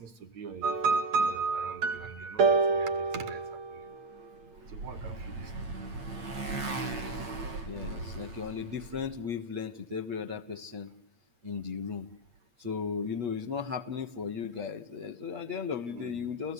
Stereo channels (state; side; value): late; left; 8.8 ms